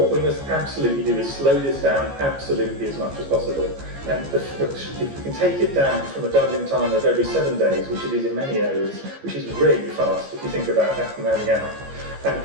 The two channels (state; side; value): late; left; 15 ms